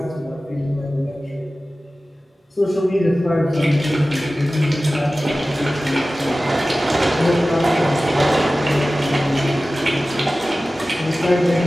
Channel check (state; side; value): normal; both; correlation 0.96